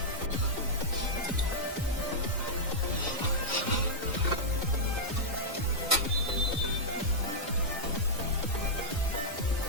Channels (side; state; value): both; normal; correlation -0.08